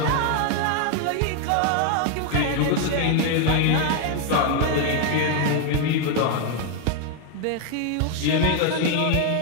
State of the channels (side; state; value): both; different; correlation 0.00